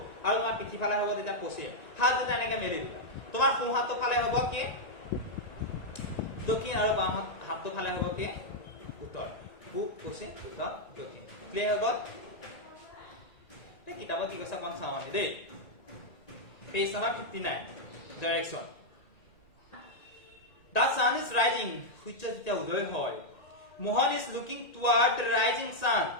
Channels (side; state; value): right; late; 1.9 ms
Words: আৰু তোমাৰ পিঠিফালে হ'ব তেতিয়া পশ্চিম হাত দুটা এনেকৈ মেলি দিবা তোমাৰ সোঁ হাতটো ফালে হ'ব কি দক্ষিণ আৰু বাম হাতটো ফালে হ'ব কি উত্তৰ পূব পশ্চিম উত্তৰ দক্ষিণ ক্লিয়াৰ হৈ গ'ল কিতাপত কি কৈছে অকণ চাওঁ আমি দেই page number 59 direction The sun is rising সূৰ্য যেতিয়া উদয় হয় Mohan is looking toward the rising sun